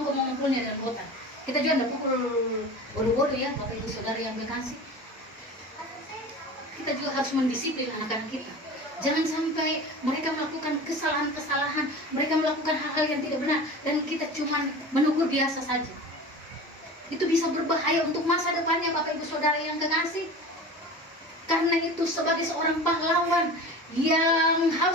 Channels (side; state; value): both; normal; correlation 0.34